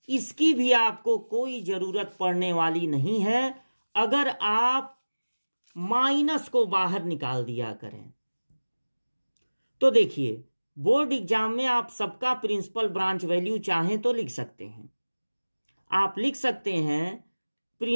इसकी भी आपको कोई जरूरत पड़ने वाली नहीं है, अगर आप माइनस को बाहर निकाल दिया करें। तो देखिए बोर्ड एग्जाम में आप सबका प्रिंसिपल ब्रांच वैल्यू चाहें तो लिख सकते हैं। आप लिख सकते हैं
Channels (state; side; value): inverted; both; correlation -1.00